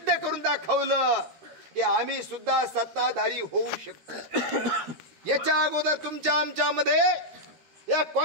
करून दाखवलं की आम्ही सुद्धा सत्ताधारी होऊ शकतो। याच्या अगोदर तुमच्या आमच्यामध्ये या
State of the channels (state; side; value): late; left; 13 ms